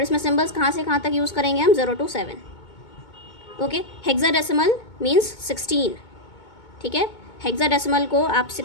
इसमें सिंबल्स कहाँ से कहाँ तक यूज़ करेंगे हम, 0 to 7। Okay, hexadecimal means 16। ठीक है, हेक्साडेसिमल को आप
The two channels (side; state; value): right; late; 2.2 ms